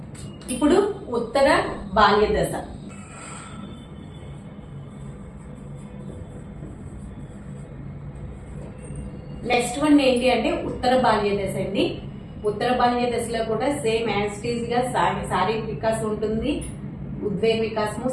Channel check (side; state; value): both; identical; correlation 1.00